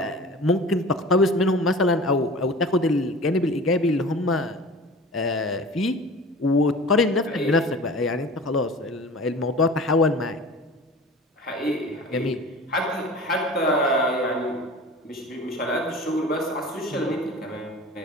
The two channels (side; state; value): both; normal; correlation 0.39